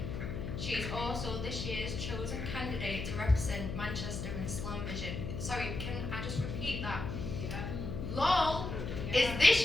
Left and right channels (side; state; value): left; noise; hum, 5 dB below the sound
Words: She is also this year's chosen candidate to represent Manchester in Slam Vision. Sorry, can I just repeat that? LOL is